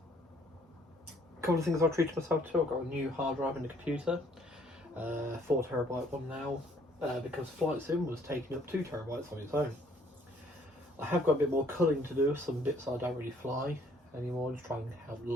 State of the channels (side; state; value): both; normal; correlation 0.62